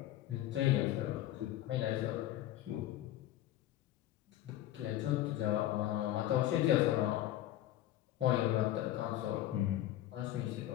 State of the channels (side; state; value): right; quieter; 13.5 dB